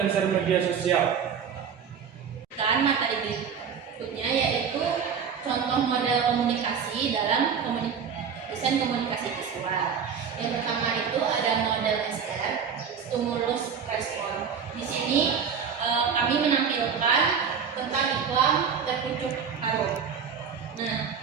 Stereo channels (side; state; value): left; quieter; 6.9 dB